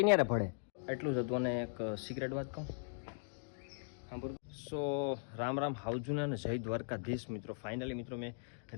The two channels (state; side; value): silent; right; digital silence